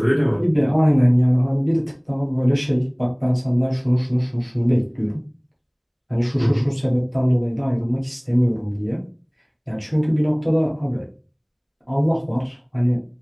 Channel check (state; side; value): identical; both; correlation 1.00